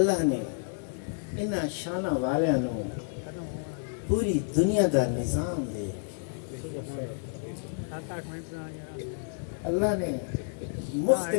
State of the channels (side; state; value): right; silent; digital silence